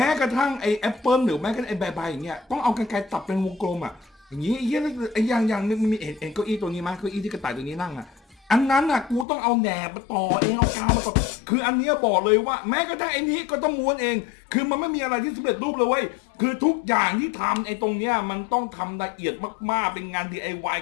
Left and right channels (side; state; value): right; drops out; at 9.2 s